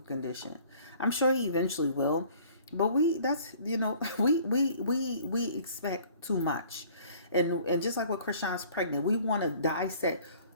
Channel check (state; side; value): inverted; both; correlation -0.53